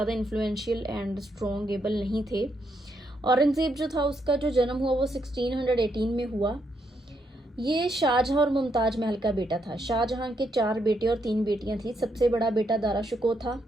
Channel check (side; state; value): both; normal; correlation 0.77